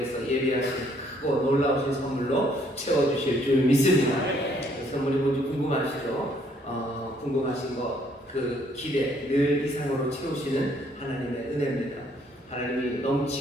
예배하신 크고 놀라우신 선물로 채워주실 줄 믿습니다. 그 선물이 뭔지 궁금하시죠? 궁금하신 것, 그 기대 늘 이상으로 채우시는 하나님의 은혜입니다. 하나님이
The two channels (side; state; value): both; normal; correlation 0.66